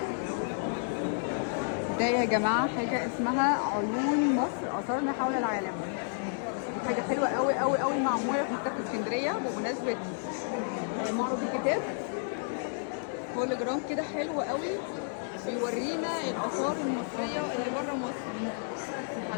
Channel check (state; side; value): silent; right; digital silence